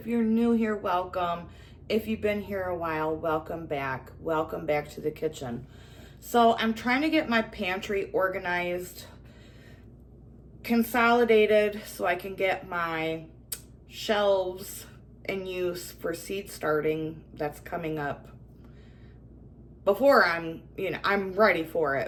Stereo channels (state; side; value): identical; both; correlation 1.00